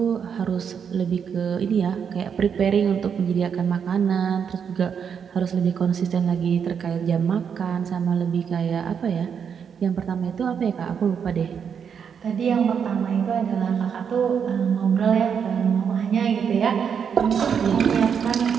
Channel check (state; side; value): quieter; left; 7.2 dB